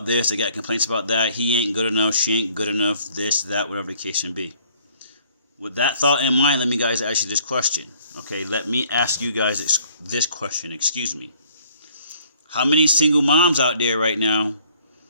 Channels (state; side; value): inverted; both; correlation -0.60